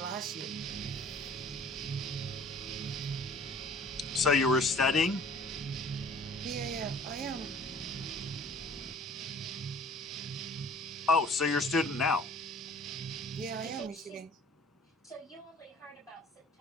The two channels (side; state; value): both; normal; correlation 0.51